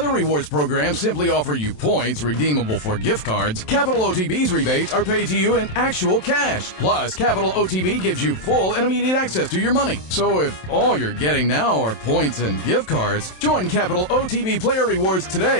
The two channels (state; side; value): late; right; 27 ms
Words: rewards programs simply offer you points redeemable for gift cards, Capital OTB's rebates are paid to you in actual cash. Plus, Capital OTB gives you full and immediate access to your money. So if all you're getting now are points and gift cards, join Capital OTB Player Rewards